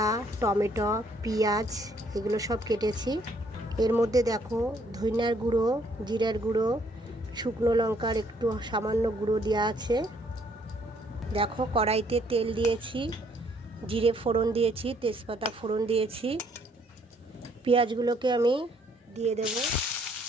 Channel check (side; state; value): both; normal; correlation 0.66